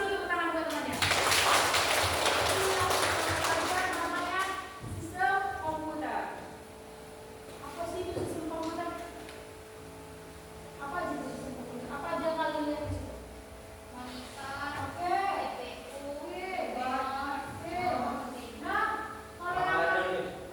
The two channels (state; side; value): identical; both; correlation 1.00